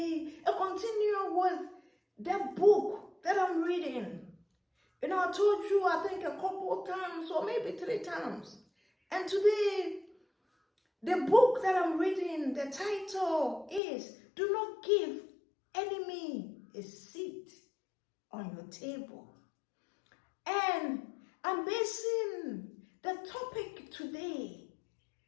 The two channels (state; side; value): drops out; right; at 13.8 s